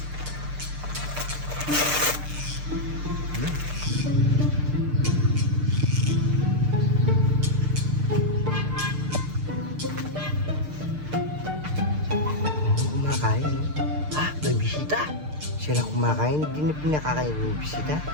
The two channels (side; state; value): left; late; 6.6 ms